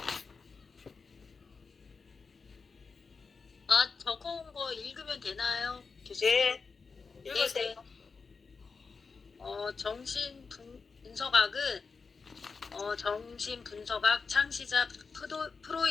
적어온 거 읽으면 되나요? 교수님? 네, 읽으세요. 정신분석학은 정신분석학 창시자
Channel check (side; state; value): right; quieter; 4.8 dB